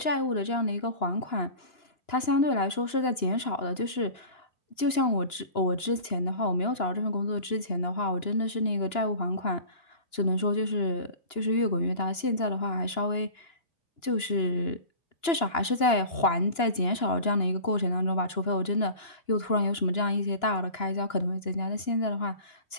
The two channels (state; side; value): late; right; 2.9 ms